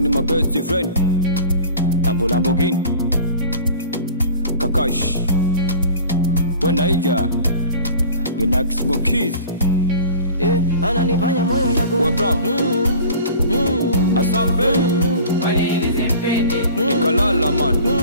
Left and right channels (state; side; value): inverted; both; correlation -0.42